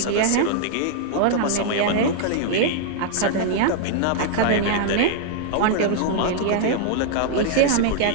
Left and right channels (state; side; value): different; both; correlation -0.01